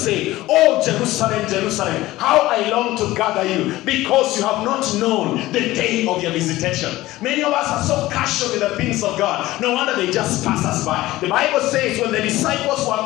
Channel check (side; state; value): right; quieter; 17.2 dB